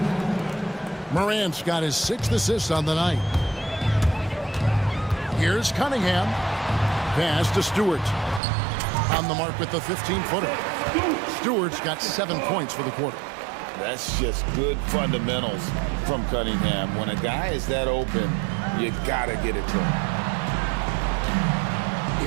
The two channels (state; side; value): drops out; left; at 8.4 s